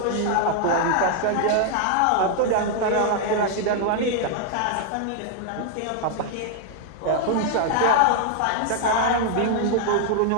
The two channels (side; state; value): both; different; correlation 0.00